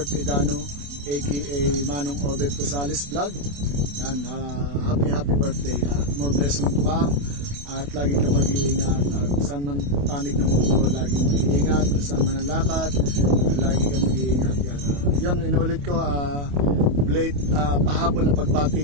Edano aka Manong Obet Rosales Vlog. Yan, happy birthday at more blessing pa. At lagi ka mag-iingat at saan man panig ng mundo, lagi mag-iingat, saan man ang lakad, lagi ka mag-iingat. Yan, yun, inulit ko, pahabol na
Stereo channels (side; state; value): left; late; 28 ms